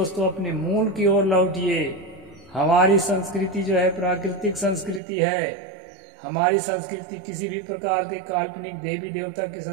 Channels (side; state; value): left; drops out; at 5.0 s